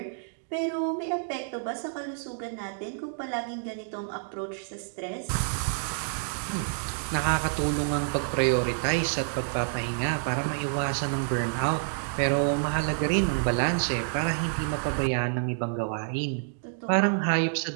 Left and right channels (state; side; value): silent; left; digital silence